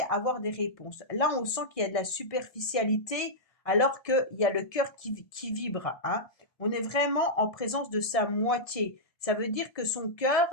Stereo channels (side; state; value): right; late; 1.7 ms